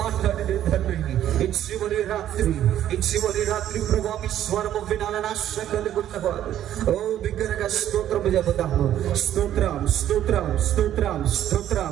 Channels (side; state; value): left; quieter; 11.5 dB